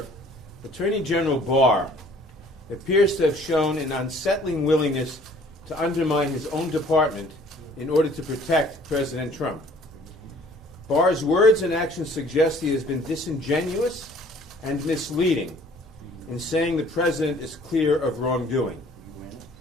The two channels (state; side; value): normal; both; correlation 0.55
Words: Attorney General Barr appears to have shown an unsettling willingness to undermine his own department in order to protect President Trump. Barr's words and actions suggest he has been disingenuous and misleading in saying the president is clear of wrongdoing.